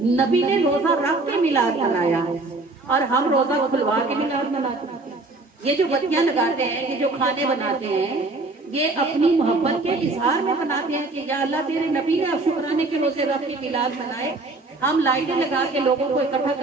نبی نے روزہ رکھ کے میلاد منایا اور ہم روزہ کھلوا کے میلاد مناتے ہیں۔ یہ جو بتیاں لگاتے ہیں، یہ جو کھانے بناتے ہیں، یہ اپنی محبت کے اظہار میں بناتے ہیں کہ یا اللہ تیرے نبی نے اب شکرانے کے روزے رکھ کے میلاد منائے، ہم لائٹیں لگا کے لوگوں کو اکٹھا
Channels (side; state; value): left; quieter; 3.2 dB